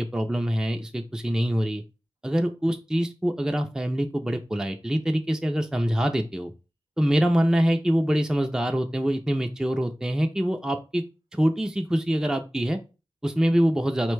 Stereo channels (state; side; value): normal; both; correlation 0.98